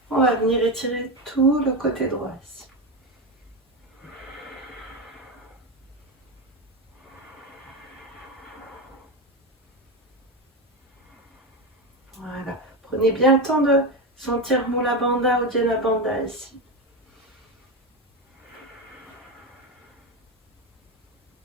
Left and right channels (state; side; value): normal; both; correlation 0.15